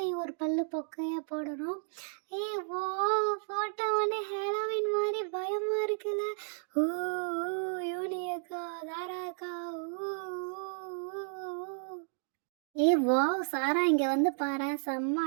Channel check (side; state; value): left; silent; digital silence